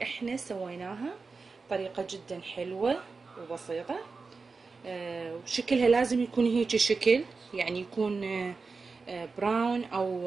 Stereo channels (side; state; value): left; quieter; 4.4 dB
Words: احنا سويناها، طريقة جدا حلوة وبسيطة. وشكلها لازم يكون هيك شكل، يعني يكون براون